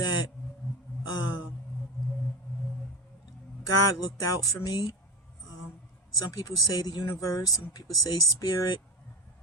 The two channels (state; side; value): normal; both; correlation 0.24